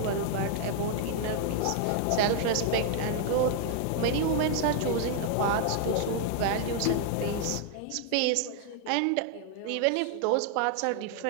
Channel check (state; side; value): different; both; correlation 0.00